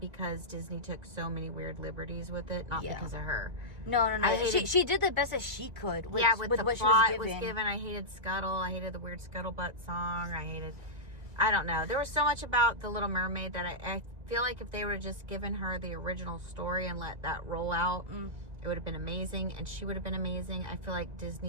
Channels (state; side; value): late; left; 1.9 ms